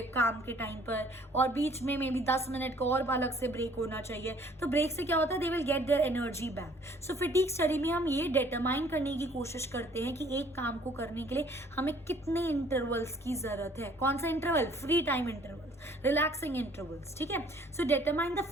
काम के टाइम पर, और बीच में मे बी 10 मिनट का और अलग से ब्रेक होना चाहिए। तो ब्रेक से क्या होता है, they will get their energy back. So फिटीग study में हम ये डिटरमाइन करने की कोशिश करते हैं कि एक काम को करने के लिए हमें कितने इंटरवल्स की जरूरत है। कौन सा interval, free time intervals, relaxing intervals, ठीक है। सो डिटरमाइन द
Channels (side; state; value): both; normal; correlation 0.58